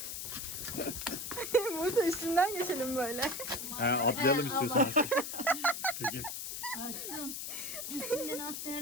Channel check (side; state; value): left; noise; hiss, 6 dB below the sound